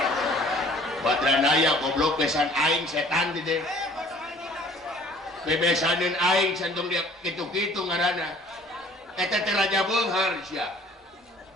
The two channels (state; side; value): normal; both; correlation 0.54